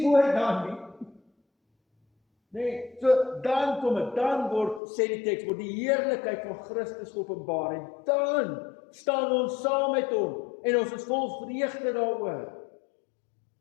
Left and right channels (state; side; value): drops out; right; at 4.8 s